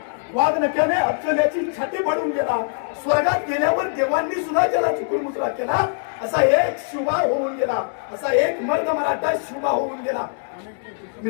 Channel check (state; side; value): silent; right; digital silence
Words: वाघनक्याने अफजल्याची छाती फाडून गेला, स्वर्गात गेल्यावर देवांनी सुद्धा ज्याला चुकूनमुचरा केला असा एक शिवा होऊन गेला, असा एक मर्द मराठा शिवा होऊन गेला.